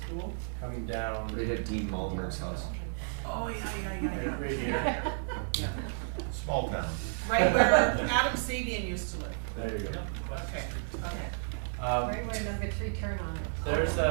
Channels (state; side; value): silent; left; digital silence